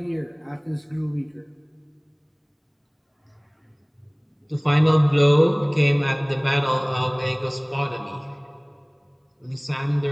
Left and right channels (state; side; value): identical; both; correlation 1.00